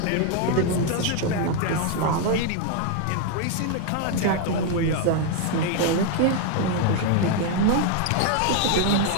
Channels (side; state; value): both; different; correlation 0.01